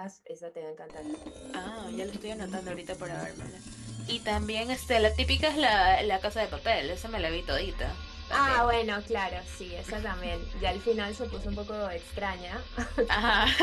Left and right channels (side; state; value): both; identical; correlation 1.00